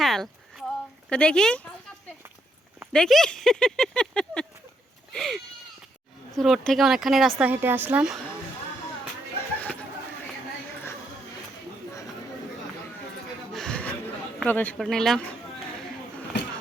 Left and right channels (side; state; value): both; normal; correlation 0.76